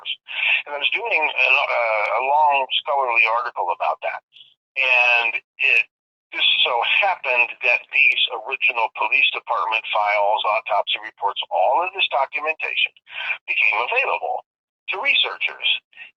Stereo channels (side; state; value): both; identical; correlation 1.00